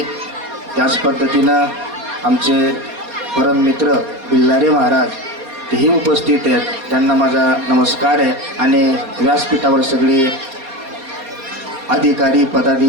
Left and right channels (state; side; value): late; left; 4.2 ms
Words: त्याच पद्धतीनं आमचे परम मित्र बिल्लारे महाराज तेही उपस्थित आहेत, त्यांना माझा नमस्कार आहे। आणि व्यासपीठावर सगळे अधिकारी